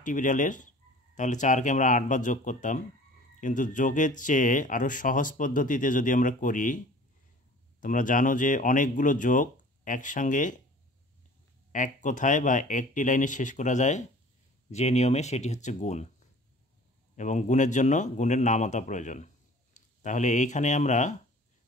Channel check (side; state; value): both; normal; correlation 0.47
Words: বিড়ালের, তাহলে 4কে আমরা 8 বার যোগ করতাম। কিন্তু যোগের চেয়ে আরও সহজ পদ্ধতিতে যদি আমরা করি, তোমরা জানো যে অনেকগুলো যোগ একসঙ্গে এক কথায় বা একটি লাইনে শেষ করা যায় যে নিয়মে, সেটি হচ্ছে গুণ। এবং গুণের জন্য গুণের নামতা প্রয়োজন। তাহলে এইখানে আমরা